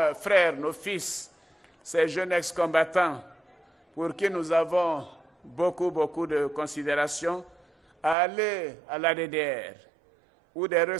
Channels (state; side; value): drops out; left; at 8.2 s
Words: frères, nos fils, ces jeunes ex-combattants pour qui nous avons beaucoup de considération, à aller à la DDR où des